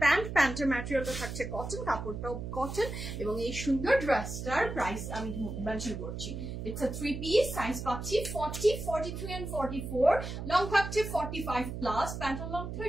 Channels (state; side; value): noise; right; hum, 6 dB below the sound